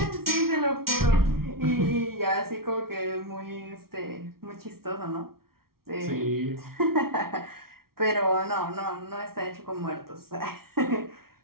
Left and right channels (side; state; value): left; late; 0.94 ms